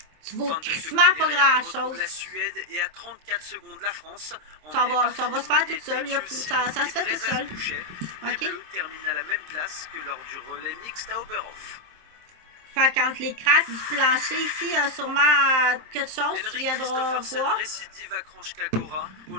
tu vaux crissement pas grand-chose. Ça va se faire tout seul. Ça se fait tout seul. OK? Termine à la même place que lors du relais mixte à Oberhof. Fait qu'entre les craques du plancher ici, il y a sûrement quelque chose que tu viendras voir. Ils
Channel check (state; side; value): late; left; 26 ms